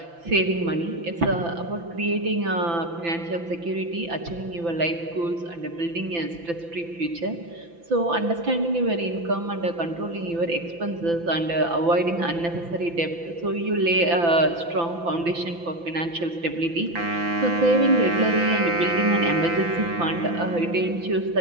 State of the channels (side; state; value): left; late; 5.9 ms